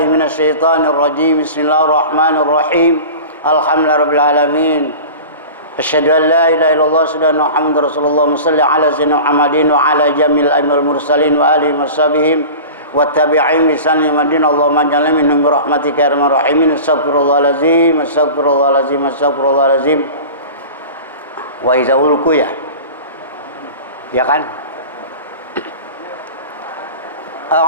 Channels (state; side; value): inverted; both; correlation -0.36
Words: من الشيطان الرجيم بسم الله الرحمن الرحيم Alhamdulillah Rabbil Alamin. Asyhadu an la ilaha illallah wa Muhammadar Rasulullah salli ala sayyidina Muhammadin wa ala jamil aimil mursalin wa alihi washabihim wa tabi'in bi sanni madin Allahumma ja'alna minhum bi rahmatika ya arhamar rahimin. Astaghfirullahalazim astaghfirullahalazim astaghfirullahalazim. Wa iza ulku ya kan?